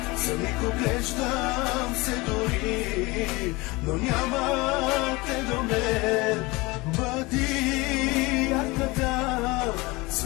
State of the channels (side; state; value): right; quieter; 23.5 dB